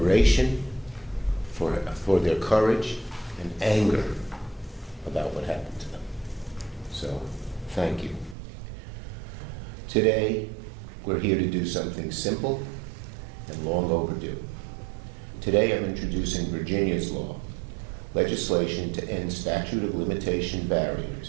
for their courage, and anger about what happened to them. So, thank you. Today, we're here to do something simple and long overdue. Today, I'm introducing Virginia's law, legislation to end statute of limitation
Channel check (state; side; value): drops out; left; at 8.3 s